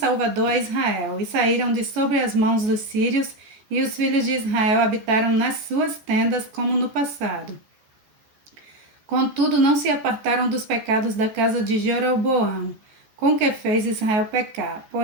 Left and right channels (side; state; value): left; late; 14 ms